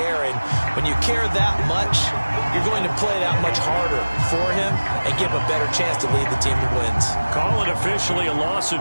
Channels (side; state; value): both; inverted; correlation -1.00